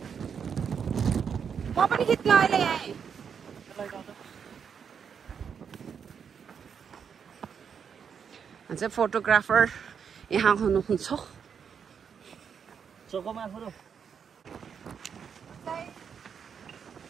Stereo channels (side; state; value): left; quieter; 7.0 dB